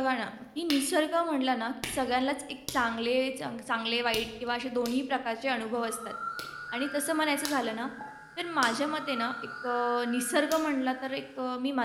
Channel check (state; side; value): identical; both; correlation 1.00